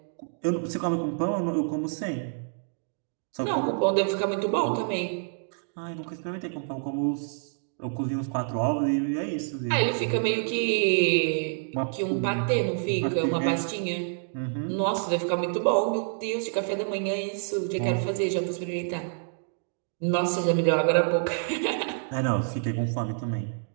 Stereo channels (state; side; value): silent; left; digital silence